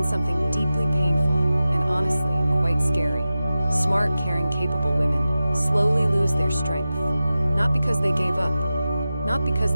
something deeply painful and honestly quite scary. Smart, caring, capable women slowly lose their strength. Not because they gave up, not because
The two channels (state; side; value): inverted; both; correlation -0.94